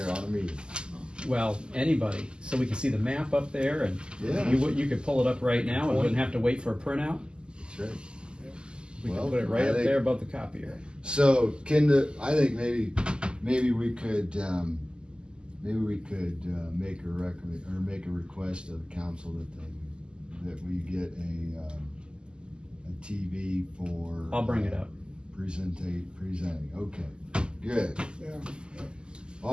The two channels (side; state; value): left; late; 0.048 ms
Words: on a meeting. Well, anybody, so we can see the map up there, and Yeah. you could pull it up right now and wouldn't have to wait for a printout. That's right. We Well, can put it right I up think- there above the copier. So, I think maybe we could, make a make a request of the council that we get a TV for. I'll bring it up. Presenting, okay, good, Yeah,